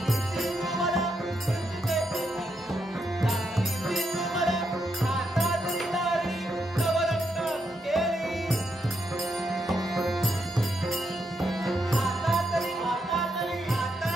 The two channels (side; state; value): both; normal; correlation 0.81